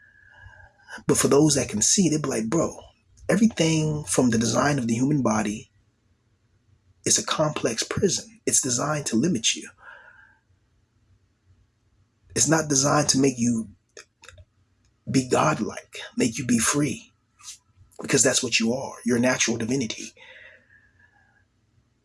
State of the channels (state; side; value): identical; both; correlation 1.00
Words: But for those that can see it, they'll be like, bro, everything from the design of the human body is a complex prison. It's designed to limit you. It's not designed to make you be godlike, make you be free, because that's what you are. You're a natural divinity.